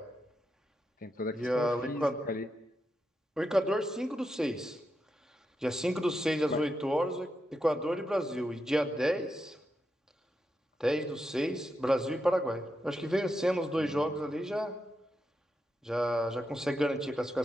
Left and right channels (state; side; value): normal; both; correlation 0.86